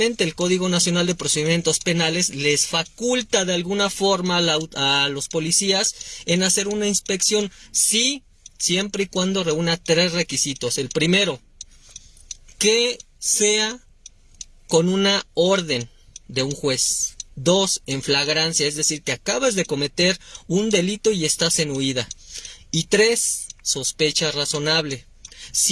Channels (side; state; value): both; identical; correlation 1.00